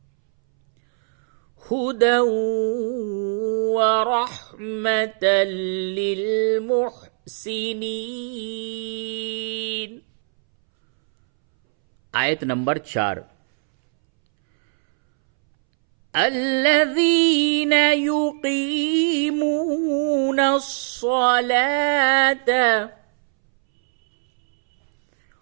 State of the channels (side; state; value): left; silent; 65 dB below the other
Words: हुदन व रहमतन लिल मुहसिनीन। आयत नंबर 4। अल्लज़ीन युक़ीमून अस्सलात